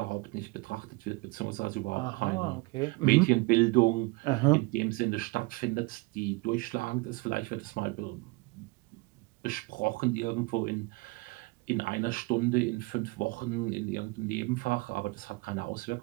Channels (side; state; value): left; quieter; 24.8 dB